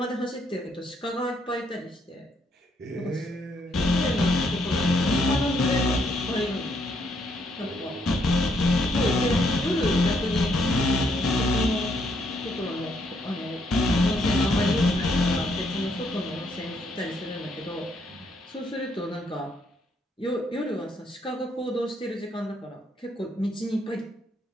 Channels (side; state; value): both; normal; correlation 0.72